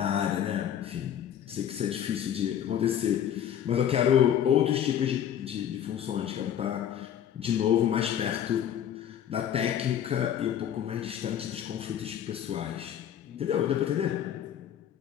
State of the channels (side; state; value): right; quieter; 9.8 dB